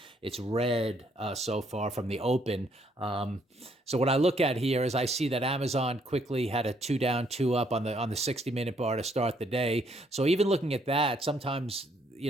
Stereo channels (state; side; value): normal; both; correlation 0.69